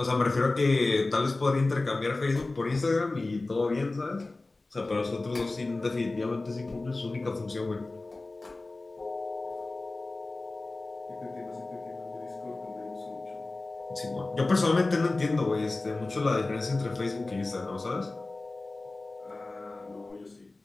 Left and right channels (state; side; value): quieter; right; 3.2 dB